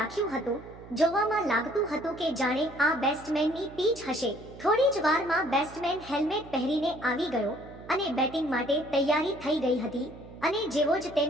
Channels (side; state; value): right; noise; hum, 18 dB below the sound